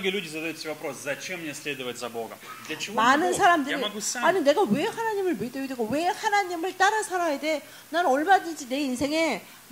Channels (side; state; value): both; identical; correlation 1.00